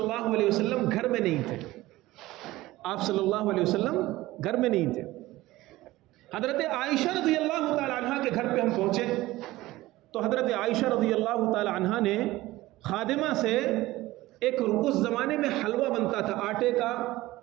علیہ وسلم گھر میں نہیں تھے، آپ صلی اللہ علیہ وسلم گھر میں نہیں تھے۔ حضرت عائشہ رضی اللہ تعالی عنہ کے گھر پہ ہم پہنچے تو حضرت عائشہ رضی اللہ تعالی عنہ نے خادمہ سے ایک اس زمانے میں حلوہ بنتا تھا آٹے کا،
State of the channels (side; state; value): left; quieter; 17.8 dB